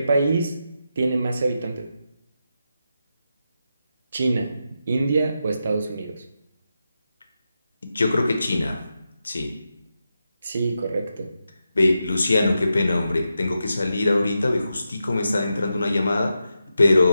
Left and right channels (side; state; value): both; inverted; correlation -0.88